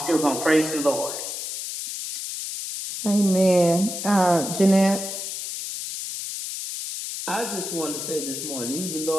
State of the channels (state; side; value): noise; left; hiss, 6 dB below the sound